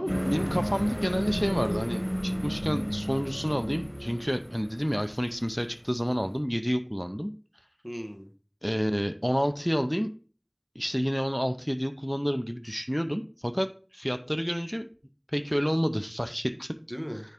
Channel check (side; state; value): both; identical; correlation 1.00